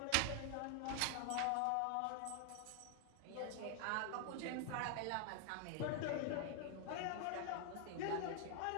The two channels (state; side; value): different; both; correlation 0.00